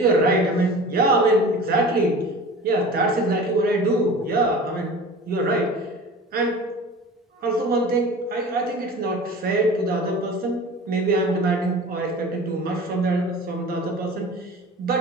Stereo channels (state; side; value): normal; both; correlation 0.38